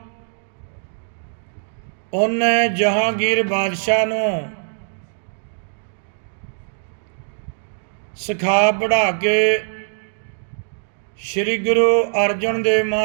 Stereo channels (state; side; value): silent; left; digital silence